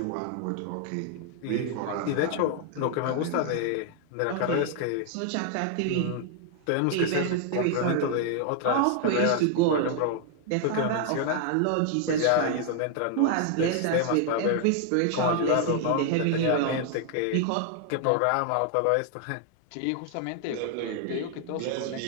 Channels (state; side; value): different; both; correlation 0.00